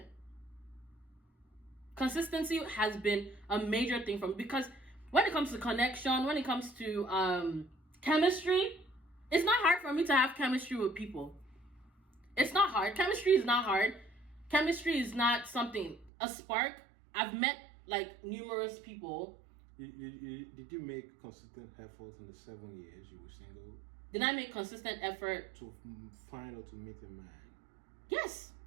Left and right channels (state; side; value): drops out; left; at 16.1 s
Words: Consistency has been a major thing for me because when it comes to connection, when it comes to chemistry, it's not hard for me to have chemistry with people. It's not hard. Chemistry is not hard. Chemistry is not something, a spark. I've met like numerous people. Did you make consistent efforts in the 7 years you were single? Did I make consistent effort to find or to meet a man? Yes.